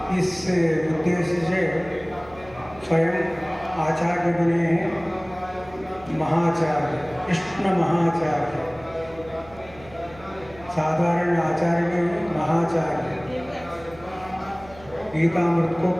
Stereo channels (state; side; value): noise; right; hum, 21 dB below the sound